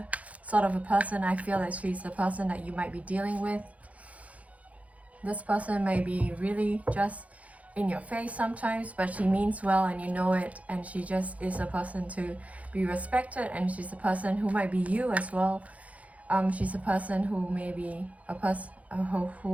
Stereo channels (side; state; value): left; late; 0.068 ms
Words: sort of a person. I feel like she's the person that you might be dealing with. This person may be really just in your face sometimes, but she means well and you know it, and she just is a person to be respected, and she's a person who might be you as well. She's a person who may be